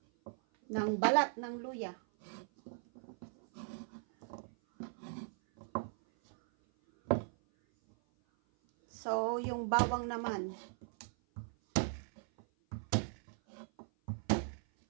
ng balat ng luya. So, yung bawang naman.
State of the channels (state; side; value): silent; left; 52 dB below the other